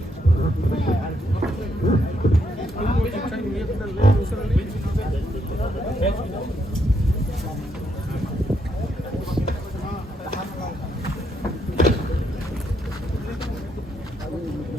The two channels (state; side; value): normal; both; correlation 0.76